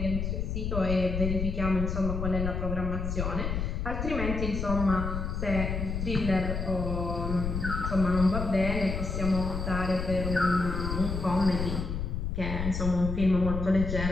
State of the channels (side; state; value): left; noise; rumble, 3 dB below the sound